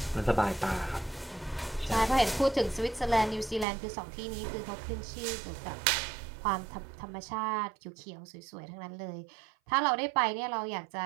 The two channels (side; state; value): left; drops out; at 3.7 s